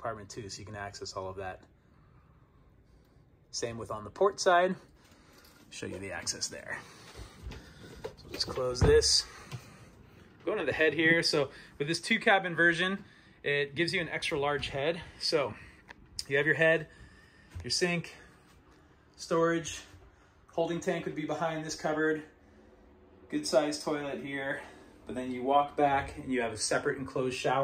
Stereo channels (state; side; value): identical; both; correlation 1.00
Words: too, so you can access all of that. Same with on the port side. Show you the access there. So just close this. Going to the head here. So with this 2-cabin version, it gives you an extra large head. So you have your head, your sink, storage, holding tank would be behind this cupboard, good sized toilet here, but then you walk back and you have a separate enclosed